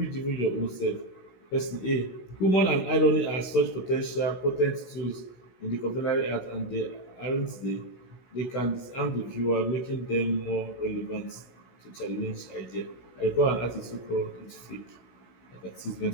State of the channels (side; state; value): right; late; 16 ms